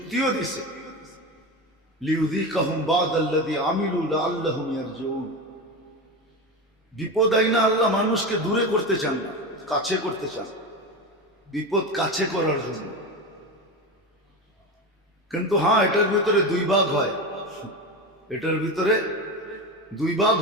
দিছে, লিউযীকাহুম বা'দাল্লাযী আমিলু লাআল্লাহুম ইয়ারজিউন। বিপদ আইনা আল্লাহ মানুষকে দূরে করতে চান না, কাছে করতে চান, বিপদ কাছে করার জন্য। কিন্তু হ্যাঁ, এটার ভিতরে দুই ভাগ হয়, এটার ভিতরে দুই ভাগ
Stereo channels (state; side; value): normal; both; correlation 0.21